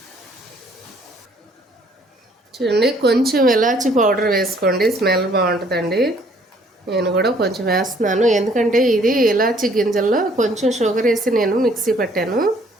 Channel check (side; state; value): both; normal; correlation 0.61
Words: చూడండి కొంచెం ఇలాచి పౌడర్ వేసుకోండి, స్మెల్ బాగుంటుందండి. నేను కూడా కొంచెం వేస్తున్నాను. ఎందుకంటే ఇది ఇలాచి గింజల్లో కొంచెం షుగర్ వేసి నేను మిక్సీ పట్టాను.